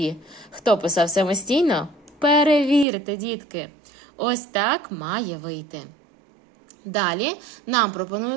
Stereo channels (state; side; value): drops out; left; at 2.9 s